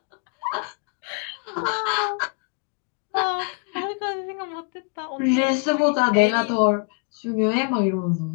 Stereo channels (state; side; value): quieter; right; 37.0 dB